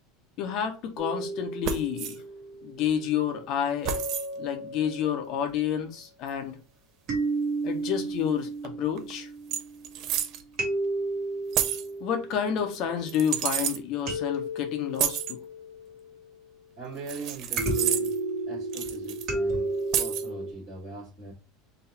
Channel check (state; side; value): normal; both; correlation 0.33